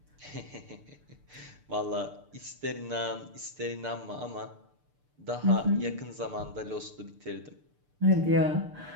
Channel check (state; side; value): late; left; 6.8 ms